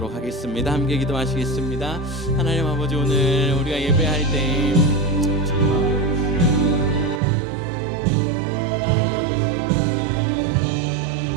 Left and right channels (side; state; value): left; drops out; at 7.2 s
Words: 하겠습니다. 함께 기도하시겠습니다. 하나님 아버지, 오늘 우리가 예배할 때